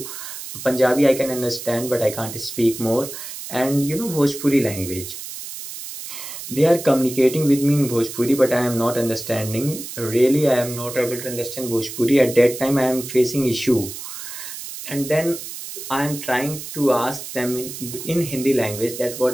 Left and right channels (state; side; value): noise; right; hiss, 10 dB below the sound